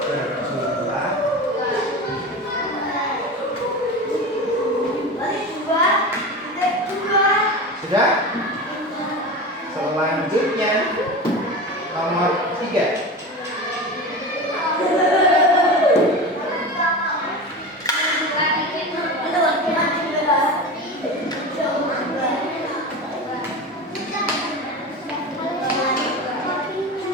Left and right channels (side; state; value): both; normal; correlation 0.28